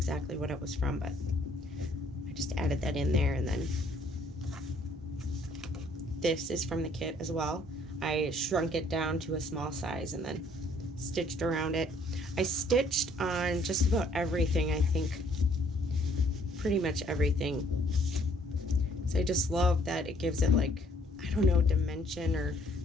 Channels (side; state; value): both; normal; correlation 0.63